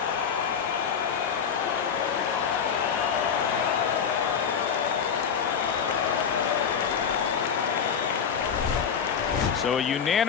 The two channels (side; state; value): right; quieter; 7.1 dB